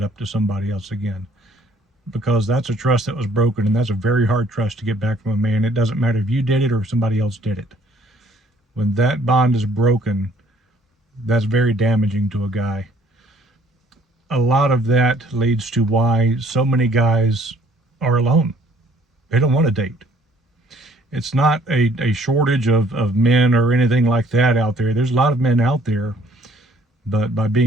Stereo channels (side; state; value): both; normal; correlation 0.61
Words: up to somebody else again, because that's a trust that was broken, and that's a very hard trust to get back from a man. It doesn't matter if you did it or if somebody else did it. When that bond is broken, that's very damaging to a guy. A lot of that leads to why so many guys are alone. They don't want to date. It's not a shortage of men or anything like that out there. There's a lot of men out there, but by